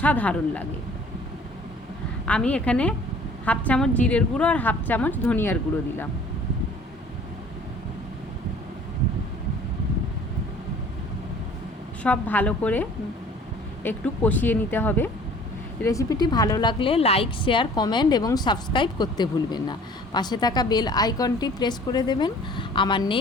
লাগে। আমি এখানে 1/2 চামচ জিরের গুঁড়ো আর 1/2 চামচ ধনিয়ার গুঁড়ো দিলাম। সব ভালো করে একটু কষিয়ে নিতে হবে। রেসিপিটি ভালো লাগলে লাইক, শেয়ার, কমেন্ট এবং সাবস্ক্রাইব করতে ভুলবেন না। পাশে থাকা বেল আইকনটি প্রেস করে দেবেন। আমার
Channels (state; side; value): normal; both; correlation 0.51